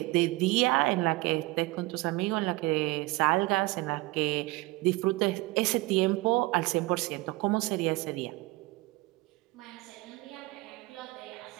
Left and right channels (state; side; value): quieter; left; 21.8 dB